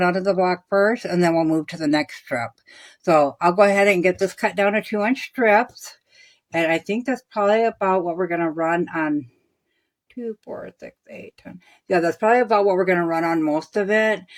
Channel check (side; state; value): both; identical; correlation 1.00